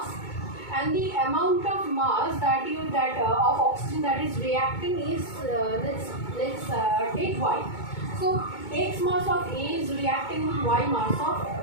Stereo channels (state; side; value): late; right; 2.2 ms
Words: and the amount of mass that of oxygen that is reacting is let's take Y. So X mass of A is reacting with Y mass of